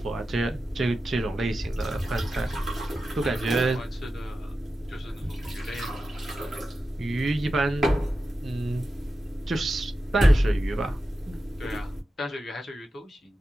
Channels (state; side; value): normal; both; correlation 0.91